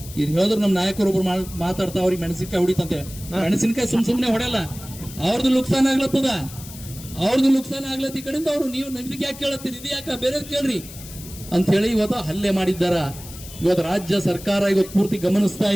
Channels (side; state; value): left; noise; hiss, 15 dB below the sound